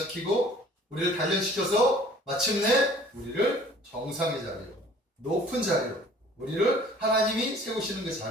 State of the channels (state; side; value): normal; both; correlation 0.51